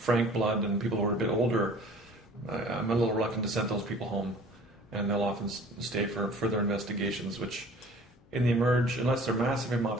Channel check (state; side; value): noise; left; hum, 29 dB below the sound